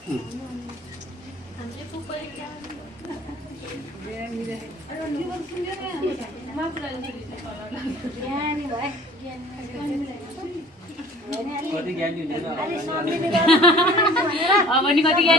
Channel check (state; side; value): normal; both; correlation 0.49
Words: हामीले फुपू कति ज्ञानी हुँदैन अब नि कति